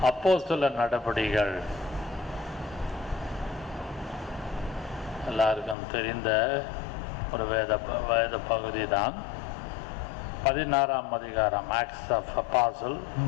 அப்போஸ்தலர் நடபடிகள் எல்லாருக்கும் தெரிந்த ஒரு வேத பகுதி தான். 16ஆம் அதிகாரம், Acts of Apostle,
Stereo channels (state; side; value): drops out; right; at 5.8 s